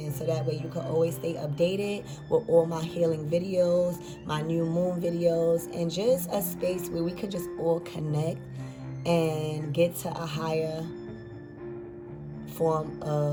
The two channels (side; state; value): both; identical; correlation 1.00